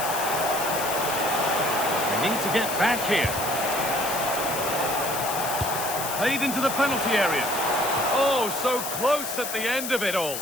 They need to get back here. Played into the penalty area. Oh, so close at the end of it all.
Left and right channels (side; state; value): left; noise; hiss, 5 dB below the sound